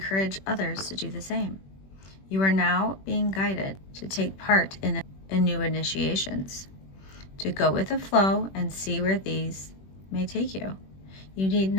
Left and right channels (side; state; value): right; late; 21 ms